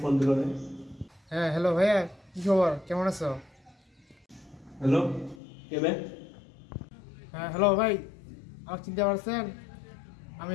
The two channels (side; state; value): right; drops out; at 5.4 s